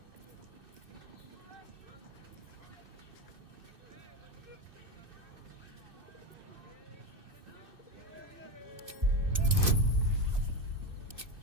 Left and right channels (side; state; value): left; late; 2.6 ms